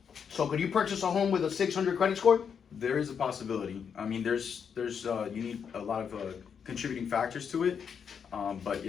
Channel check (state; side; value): quieter; right; 7.0 dB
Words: So could you purchase a home with a 600 credit score? There is a possibility. I mean, there's you need a lot of contributing factors to it. But